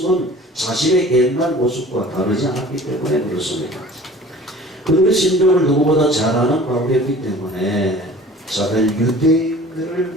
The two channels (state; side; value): normal; both; correlation 0.45